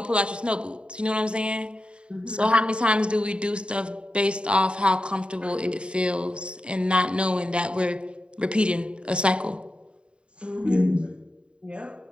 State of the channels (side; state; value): left; late; 0.054 ms